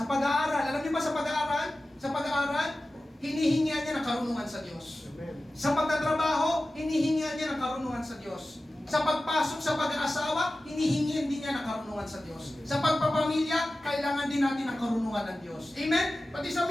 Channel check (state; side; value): normal; both; correlation 0.95